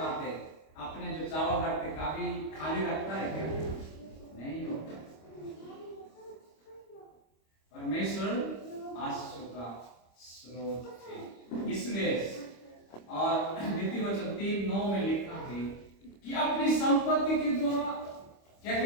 अपने जो चावल रखते, कभी खाली रखता है क्या? नहीं होता। परमेश्वर आशीषों का स्रोत है। इसलिए और नीति वचन 3:9 में लिखा है कि अपनी संपत्ति के द्वारा, क्या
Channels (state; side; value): late; right; 25 ms